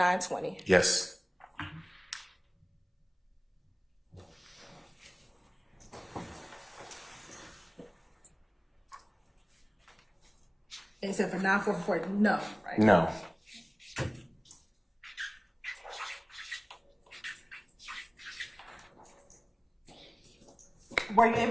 Yes. Except for 944, no, right? No. Were you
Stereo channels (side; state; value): both; identical; correlation 1.00